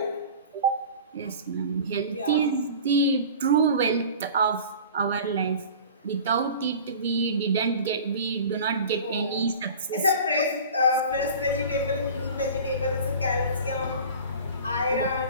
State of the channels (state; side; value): inverted; both; correlation -0.40